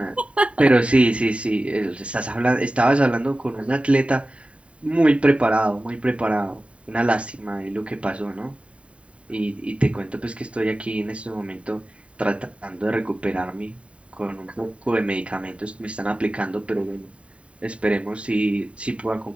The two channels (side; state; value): left; late; 0.062 ms